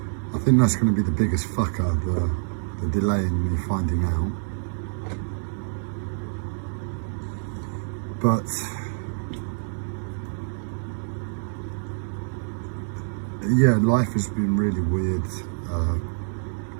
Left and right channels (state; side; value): silent; left; digital silence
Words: I think that's going to be the biggest fucker, the delay in me finding out. But yeah, life has been really weird.